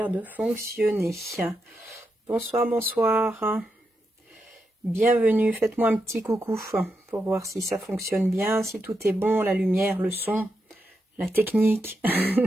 de fonctionner. Bonsoir, bonsoir. Bienvenue, faites-moi un petit coucou pour voir si ça fonctionne bien, si tout est bon, la lumière, le son, la technique.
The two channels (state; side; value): normal; both; correlation 0.85